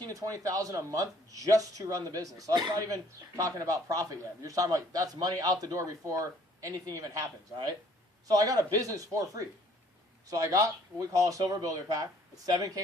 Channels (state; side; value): normal; both; correlation 0.59